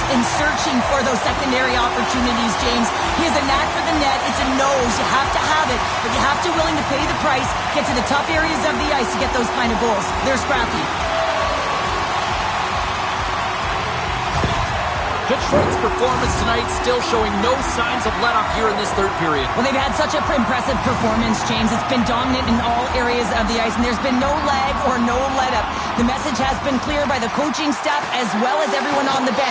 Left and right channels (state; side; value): identical; both; correlation 1.00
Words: and searching for those secondary opportunities, James. He has a knack for the net. It's a nose. You have to have it, but you have to willing to pay the price, get to the tough areas of the ice to get those kind of goals. They're scrappy. Detroit's performance tonight still showing no signs of let-up here in this third period. Well, they've had such an impressive performance, James. It's been dominant in all areas of the ice, and there's been no lag or no let-up. The message has been clear by the coaching staff as well as everyone on the